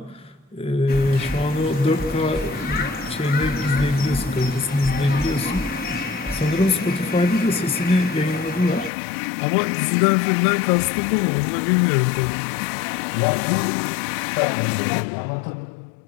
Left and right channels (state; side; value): drops out; right; at 8.9 s